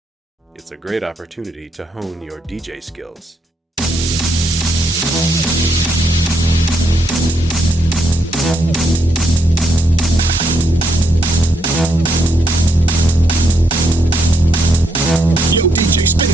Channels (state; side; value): normal; both; correlation 0.76